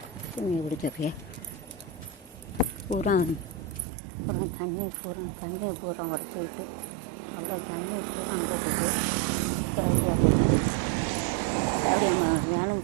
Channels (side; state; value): left; drops out; at 3.9 s